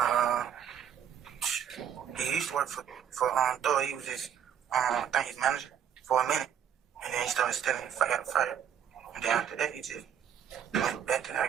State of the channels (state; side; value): quieter; left; 8.9 dB